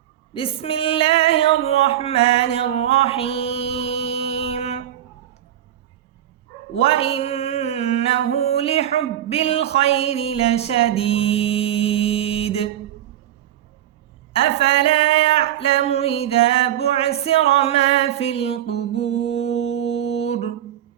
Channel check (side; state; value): left; quieter; 11.8 dB